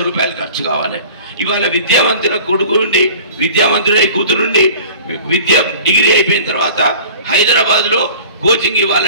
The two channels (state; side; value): inverted; both; correlation -0.43